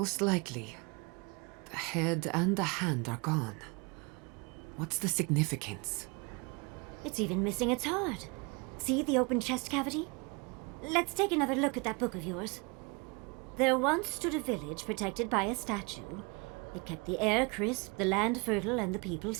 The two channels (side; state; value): left; quieter; 29.7 dB